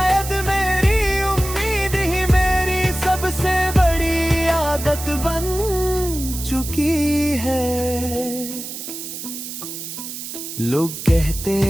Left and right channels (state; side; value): noise; right; hiss, 9 dB below the sound